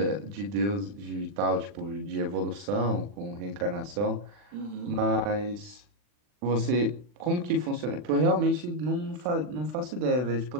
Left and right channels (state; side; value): late; left; 40 ms